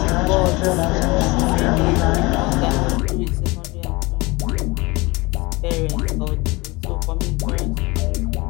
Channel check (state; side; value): quieter; right; 23.7 dB